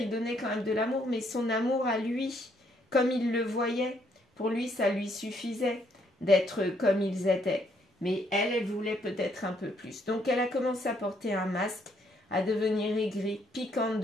donnait quand même de l'amour, mais son amour à lui, comme il le voyait, pour lui, ça lui suffisait d'être comme ils étaient. Mais elle, elle voulait peut-être un peu plus. Donc elle a commencé à porter un masque, à devenir aigrie, piquante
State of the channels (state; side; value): normal; both; correlation 0.70